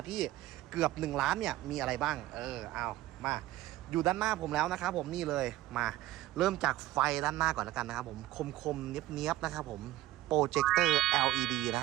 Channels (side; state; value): left; quieter; 15.5 dB